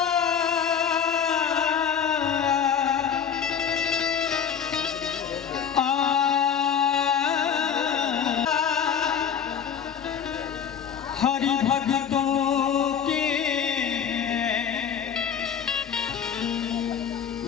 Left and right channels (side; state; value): right; quieter; 7.7 dB